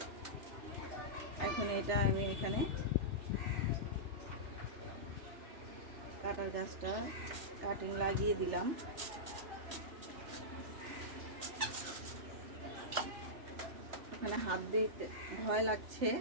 এখন এটা আমি এখানে কাটার গাছটা কাটিং লাগিয়ে দিলাম। এখানে হাত দিতে ভয় লাগছে,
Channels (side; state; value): left; late; 3.3 ms